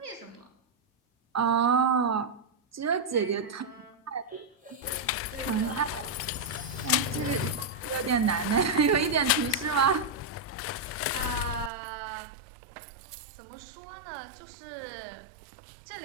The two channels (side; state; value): left; drops out; at 11.7 s